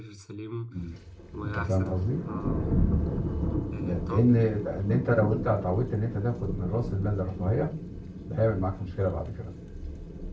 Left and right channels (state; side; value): identical; both; correlation 1.00